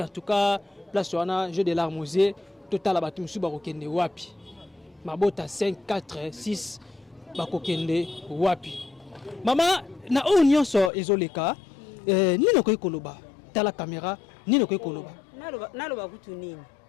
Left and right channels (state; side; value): drops out; right; at 10.9 s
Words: en tout cas place wana jeu de l'armosier total batu musu bakokende wapi mabota 5 4 6 bakokende wapi Maman, na o nyonso ezoleka, nino koy koloba, tala caméra, nino koy koloba. Naloba kutu nini.